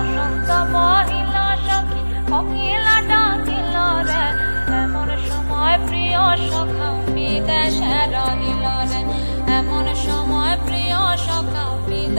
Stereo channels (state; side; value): inverted; both; correlation -1.00